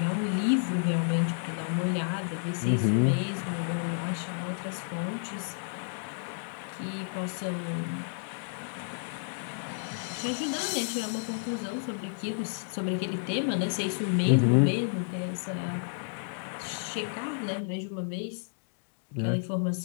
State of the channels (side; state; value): right; silent; digital silence